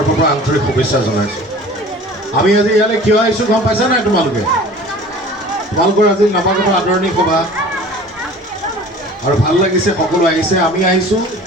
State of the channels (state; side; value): normal; both; correlation 0.44